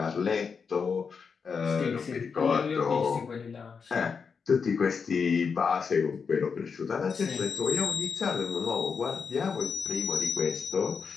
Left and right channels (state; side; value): quieter; right; 5.7 dB